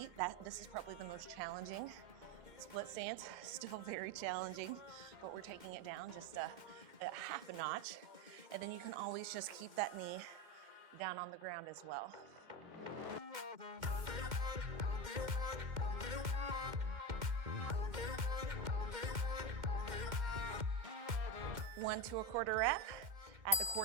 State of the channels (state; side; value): late; left; 2.1 ms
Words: This is probably the most challenging. Split stance, still very challenging, but we're taking it down just a half a notch. And then you can always just keep that knee down on the ground as well. 1 to a quarter rep, at the